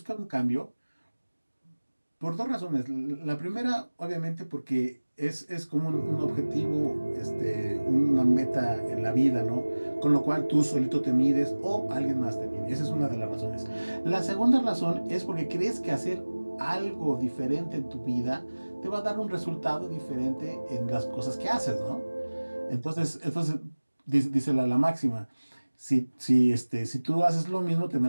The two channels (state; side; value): inverted; both; correlation -1.00